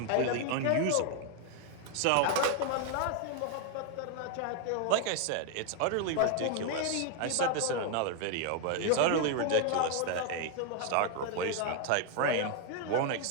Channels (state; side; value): different; both; correlation 0.01